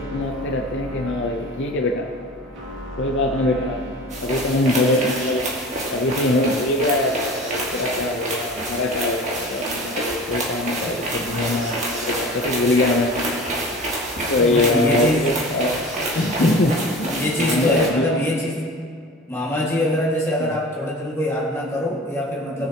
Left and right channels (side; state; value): both; normal; correlation 0.38